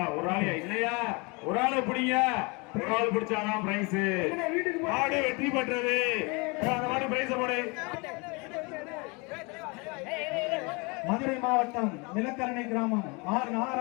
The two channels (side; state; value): right; quieter; 29.2 dB